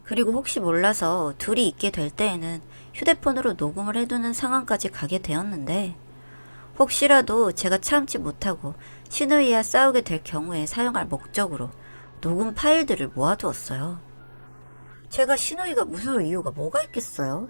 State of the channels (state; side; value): inverted; both; correlation -1.00